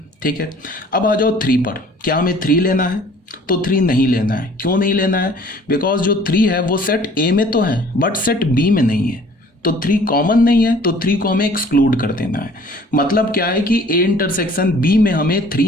ठीक है। अब आ जाओ 3 पर, क्या हमें 3 लेना है, तो 3 नहीं लेना है। क्यों नहीं लेना है, बिकॉज जो 3 है वो सेट ए में तो है बट सेट बी में नहीं है, तो 3 कॉमन नहीं है, तो 3 को हमें एक्सक्लूड कर देना है। मतलब क्या है कि ए इंटरसेक्शन बी में हमें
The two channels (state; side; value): normal; both; correlation 0.53